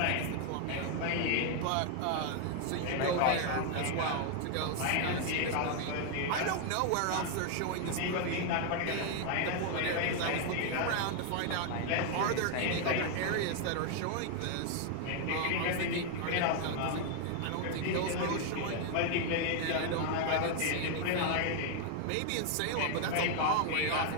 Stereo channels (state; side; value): different; both; correlation 0.00